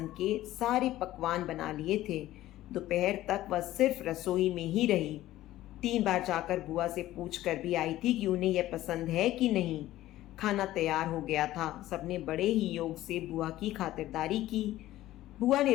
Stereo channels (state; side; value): quieter; right; 15.0 dB